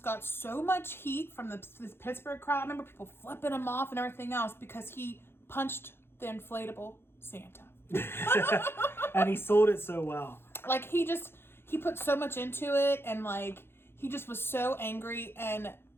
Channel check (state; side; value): late; right; 0.11 ms